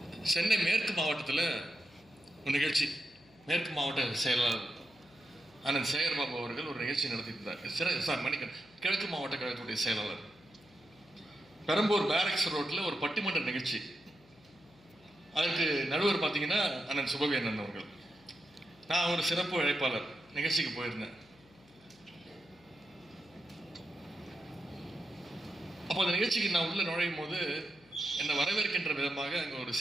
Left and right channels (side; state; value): left; noise; hum, 27 dB below the sound